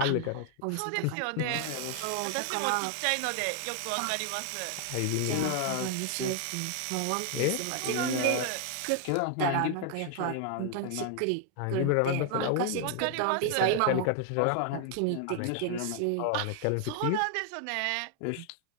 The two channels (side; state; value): both; different; correlation 0.00